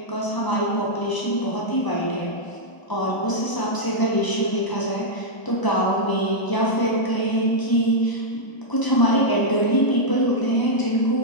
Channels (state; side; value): late; right; 1.0 ms